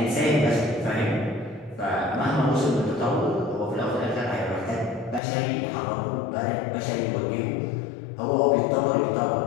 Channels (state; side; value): drops out; right; at 5.2 s